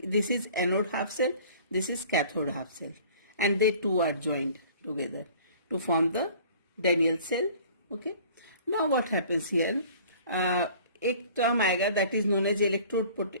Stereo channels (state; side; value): inverted; both; correlation -0.49